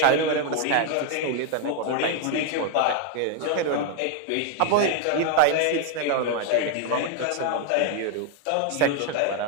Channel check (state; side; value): different; both; correlation 0.00